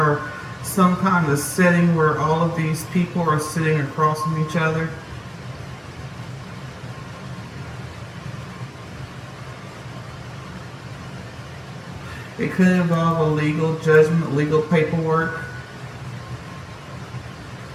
some kind of setting where all of these people are sitting across from each other. It could involve a legal judgment, legal paperwork.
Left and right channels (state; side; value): identical; both; correlation 1.00